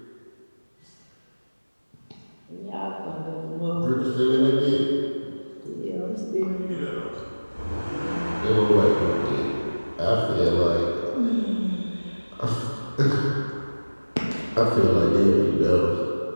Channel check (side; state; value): both; inverted; correlation -1.00